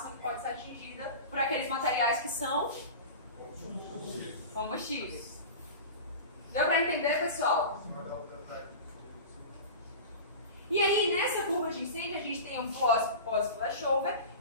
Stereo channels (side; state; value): both; inverted; correlation -0.31